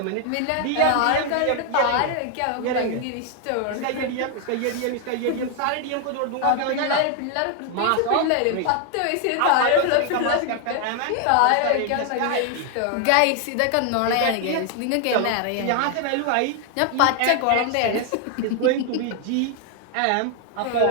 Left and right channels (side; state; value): both; different; correlation 0.00